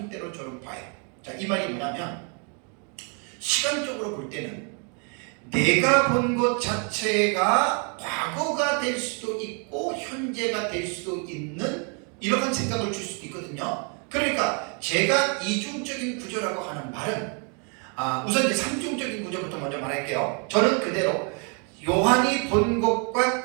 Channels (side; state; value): left; quieter; 37.7 dB